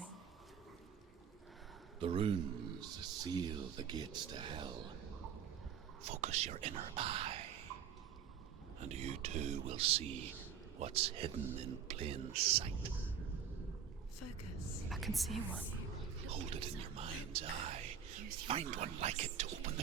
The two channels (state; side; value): quieter; left; 7.9 dB